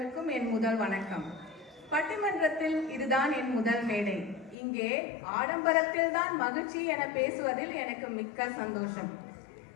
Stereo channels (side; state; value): right; drops out; at 4.5 s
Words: என் முதல் வணக்கம். பட்டிமன்றத்தில் இதுதான் என் முதல் மேடை. இங்கே ஆடம்பரத்தில் தான் மகிழ்ச்சி என பேசுவதில் எனக்கு மிக்க சந்தோஷம்.